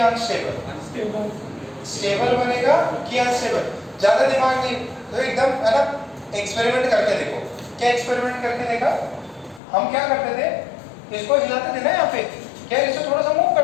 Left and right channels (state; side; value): drops out; right; at 9.6 s